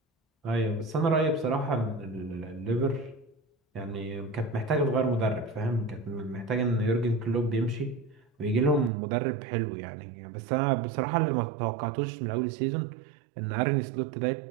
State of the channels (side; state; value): left; drops out; at 8.9 s